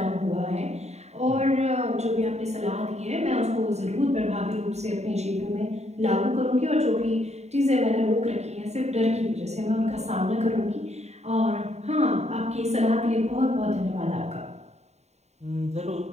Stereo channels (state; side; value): late; left; 0.32 ms